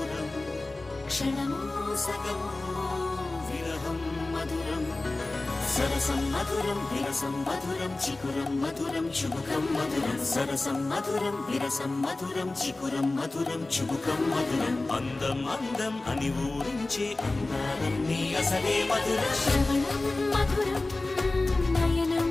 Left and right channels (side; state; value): right; quieter; 3.1 dB